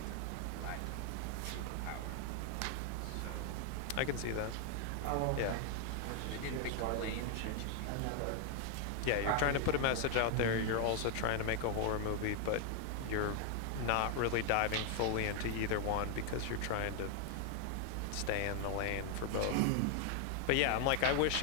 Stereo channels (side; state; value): both; different; correlation 0.00